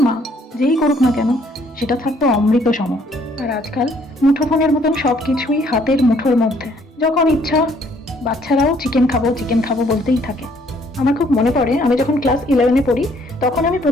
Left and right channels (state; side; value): normal; both; correlation 0.64